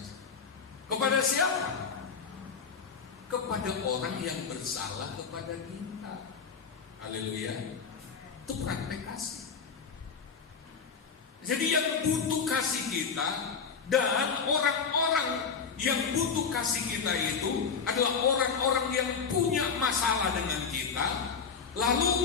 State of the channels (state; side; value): quieter; right; 5.9 dB